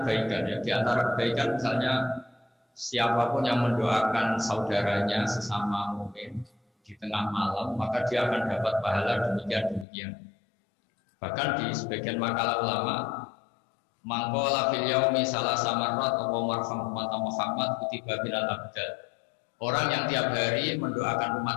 kebaikan ya. Di antara kebaikan misalnya siapapun yang mendoakan saudaranya sesama mukmin di tengah malam, maka dia akan dapat pahala demikian. Bahkan di sebagian makalah ulama, mangkola fil yaumi salasa marrat wa marham Muhammad kutiba bilal abdal. Orang yang tiap hari mendoakan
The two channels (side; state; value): right; drops out; at 9.9 s